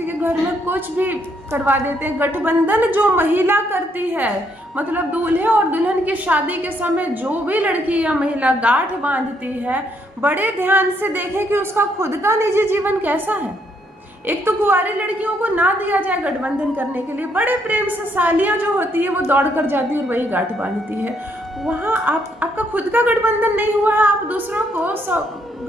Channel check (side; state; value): both; normal; correlation 0.72